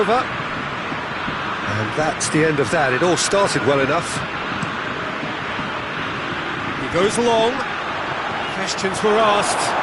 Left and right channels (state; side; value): identical; both; correlation 1.00